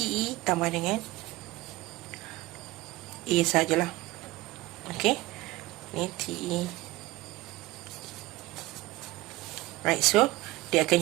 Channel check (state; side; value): quieter; left; 19.4 dB